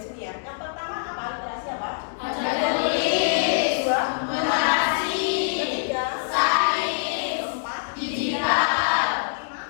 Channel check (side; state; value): right; silent; digital silence